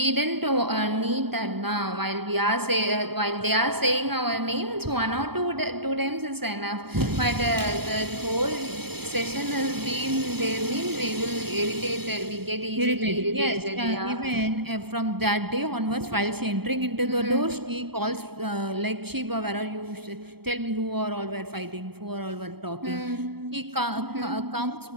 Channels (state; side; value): late; left; 0.97 ms